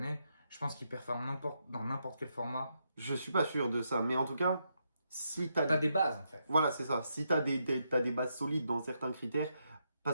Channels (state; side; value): inverted; both; correlation -0.81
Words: je pense qu'ils performent dans n'importe quel format. Je suis pas sûr de ça, mais en tout cas, si t'as... T'as des bases en fait. Voilà, c'est ça. Si t'as t'as des bases solides dans certains critères,